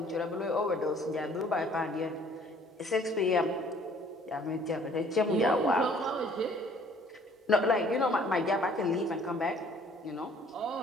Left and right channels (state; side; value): normal; both; correlation 0.57